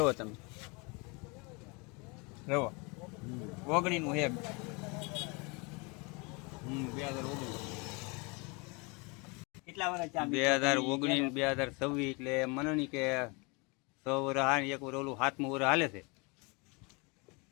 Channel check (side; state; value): right; quieter; 29.5 dB